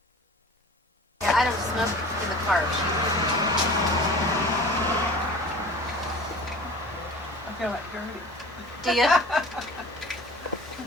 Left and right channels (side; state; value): both; normal; correlation 0.42